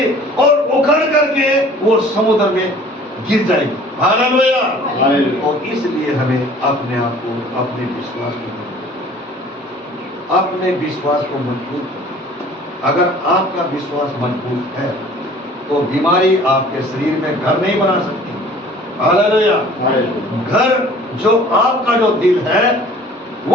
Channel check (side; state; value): both; normal; correlation 0.50